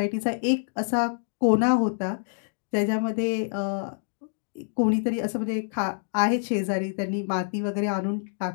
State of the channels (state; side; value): silent; right; digital silence